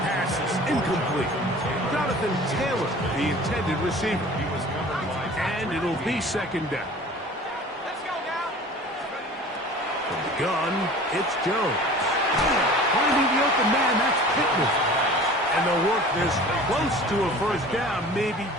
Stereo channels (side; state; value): both; normal; correlation 0.43